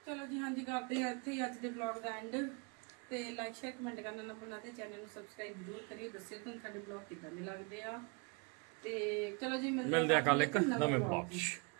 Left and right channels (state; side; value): quieter; left; 33.1 dB